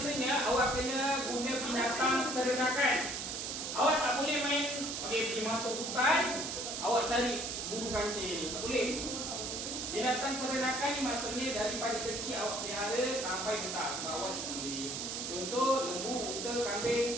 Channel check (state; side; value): noise; right; hiss, 4 dB below the sound